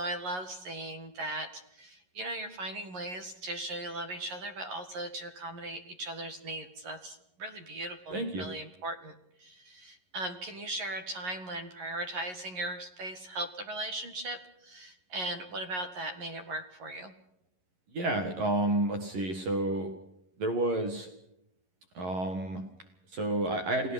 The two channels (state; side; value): late; left; 11 ms